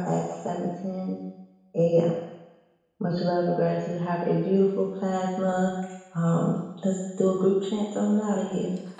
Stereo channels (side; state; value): both; identical; correlation 1.00